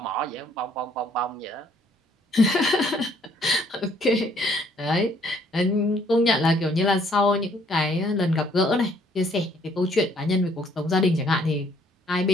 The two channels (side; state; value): both; normal; correlation 0.64